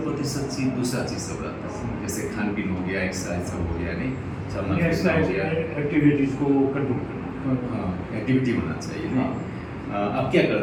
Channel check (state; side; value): identical; both; correlation 1.00